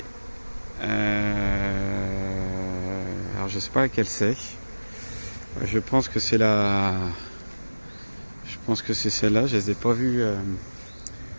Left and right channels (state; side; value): inverted; both; correlation -1.00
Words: Alors je sais pas laquelle c'est. Je pense que c'est c'est celle-là. Je les ai pas vues